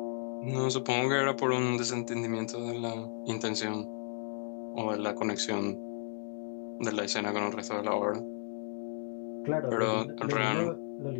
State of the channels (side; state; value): right; silent; 55 dB below the other